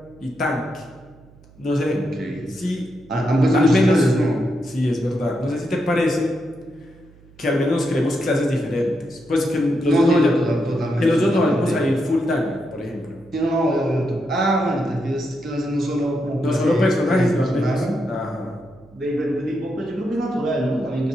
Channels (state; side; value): noise; right; hum, 26 dB below the sound